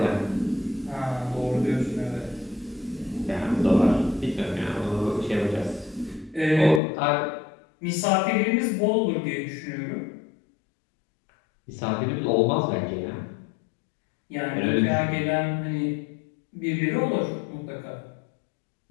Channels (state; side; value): drops out; right; at 6.8 s